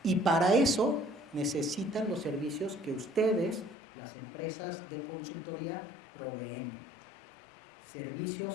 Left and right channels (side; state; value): right; drops out; at 3.8 s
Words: y para eso necesitan los servicios que ustedes, las empresas de consultoría, proveen.